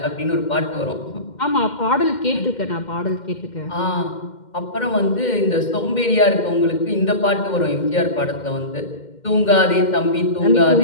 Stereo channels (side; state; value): right; late; 2.1 ms